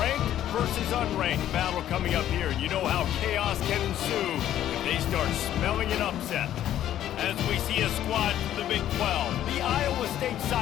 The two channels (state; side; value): quieter; right; 11.8 dB